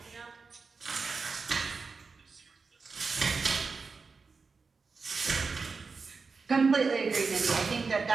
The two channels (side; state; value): left; quieter; 4.6 dB